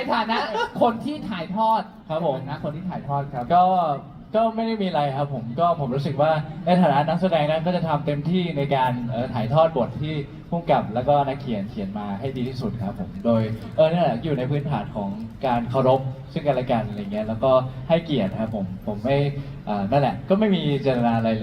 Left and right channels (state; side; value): identical; both; correlation 1.00